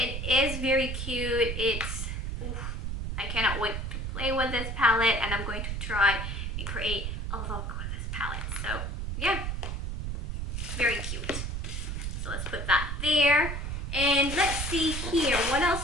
is very cute. It's, oof, I cannot wait to play with this palette, and I'm going to try and create a look with this palette. So, yeah. Very cute. So let's put that there. And let's see here. What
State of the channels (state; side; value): noise; right; rumble, 3 dB below the sound